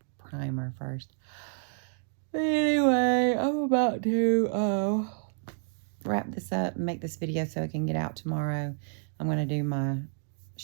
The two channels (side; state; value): left; silent; 58 dB below the other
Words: primer first. But anyway, I'm about to wrap this up and make this video so it can get out tomorrow. I'm going to do my